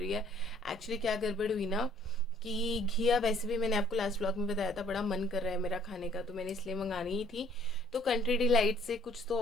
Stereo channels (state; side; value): normal; both; correlation 0.60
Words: है। एक्चुअली क्या गड़बड़ हुई ना कि घिया वैसे भी मैंने आपको लास्ट व्लॉग में बताया था बड़ा मन कर रहा है मेरा खाने का, तो मैंने इसलिए मंगानी ही थी। तो कंट्री डिलाइट से कुछ तो